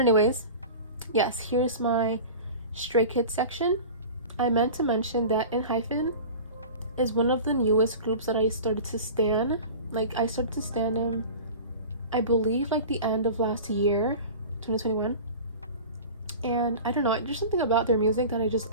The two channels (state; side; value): inverted; both; correlation -0.35